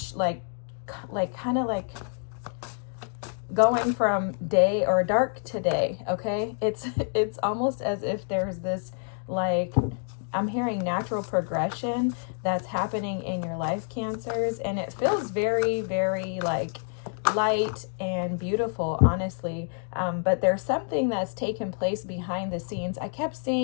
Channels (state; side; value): silent; right; 60 dB below the other